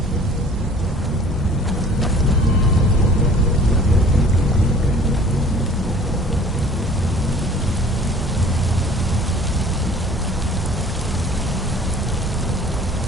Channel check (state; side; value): normal; both; correlation 0.50